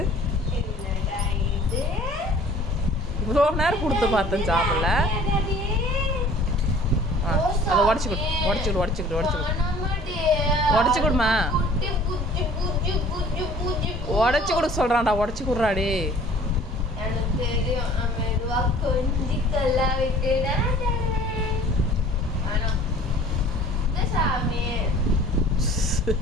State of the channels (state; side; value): normal; both; correlation 0.50